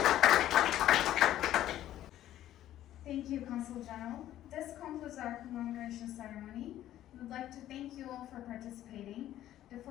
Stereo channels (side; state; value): right; quieter; 12.8 dB